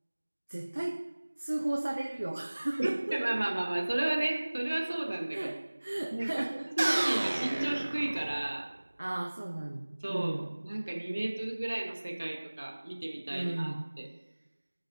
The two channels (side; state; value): both; inverted; correlation -1.00